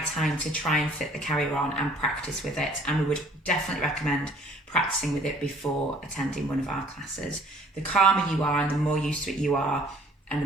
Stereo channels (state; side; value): normal; both; correlation 0.56